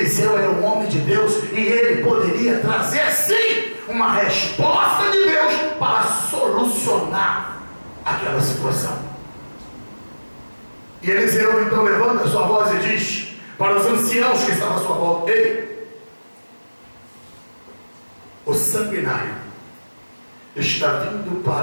era um homem de Deus e ele poderia trazer sim uma resposta de Deus para solucionar aquela situação. E Eliseu então levanta a sua voz e diz para os anciãos que estavam à sua volta: ei, o sanguinário está vindo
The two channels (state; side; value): inverted; both; correlation -1.00